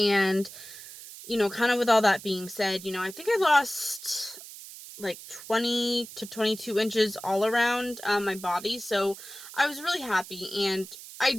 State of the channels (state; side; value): noise; right; hiss, 15 dB below the sound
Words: kind of with all that being said, I think I lost, like, 20 to 22 inches all around my body. So I was really happy, and